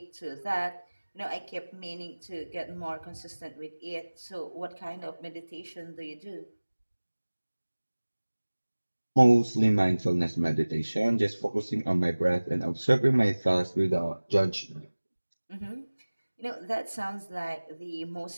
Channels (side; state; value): both; inverted; correlation -1.00